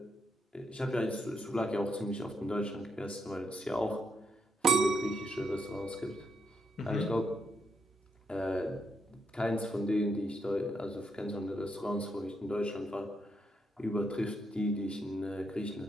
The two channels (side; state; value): both; normal; correlation 0.80